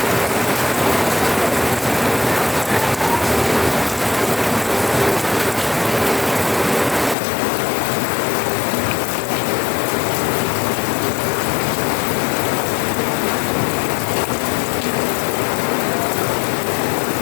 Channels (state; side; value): drops out; right; at 7.2 s